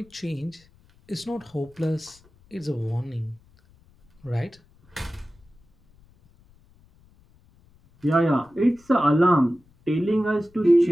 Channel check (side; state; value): left; noise; rumble, 30 dB below the sound